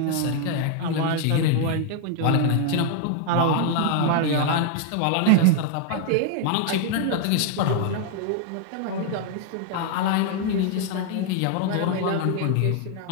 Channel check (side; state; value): both; different; correlation 0.00